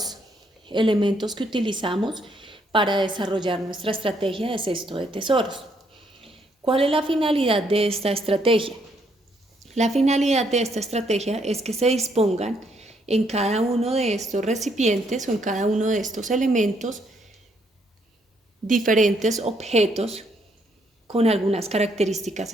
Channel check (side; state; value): both; normal; correlation 0.72